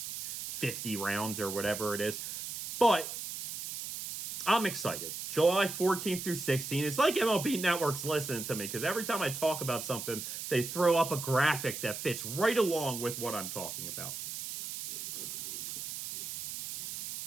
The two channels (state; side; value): noise; right; hiss, 7 dB below the sound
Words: 50 rounds or whatever it is. But I'm excited. July 14th through 16th. It's like MLB Network's listening to me because every time I talk about something, they throw up a graphic that fits right along with what I'm talking about.